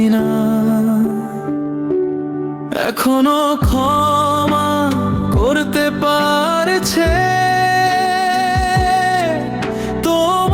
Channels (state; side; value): identical; both; correlation 1.00